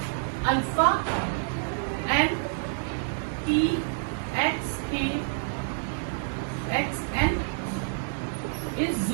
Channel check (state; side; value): silent; left; digital silence